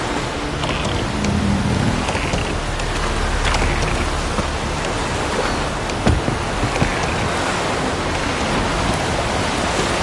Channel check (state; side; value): identical; both; correlation 1.00